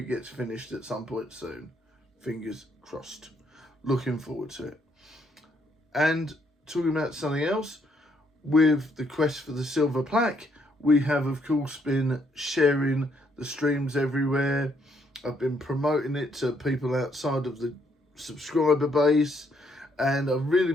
gets finished at some point soon. Fingers crossed. Looking forward to it. And talking about something else, with the quest for the Silver Plaque, we have, of course, been sharing the streams everywhere. I've been promoting it to people outside of the subscriber base, and I've really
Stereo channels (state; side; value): normal; both; correlation 0.71